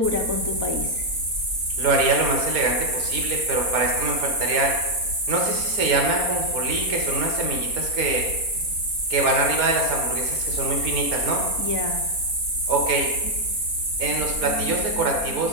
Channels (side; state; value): left; late; 4.3 ms